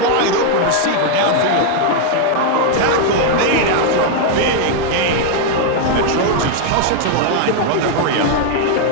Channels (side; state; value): both; different; correlation 0.00